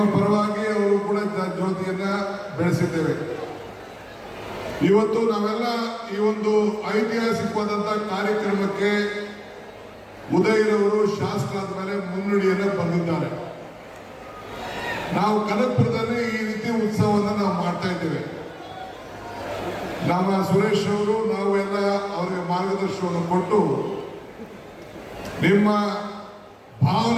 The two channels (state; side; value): identical; both; correlation 1.00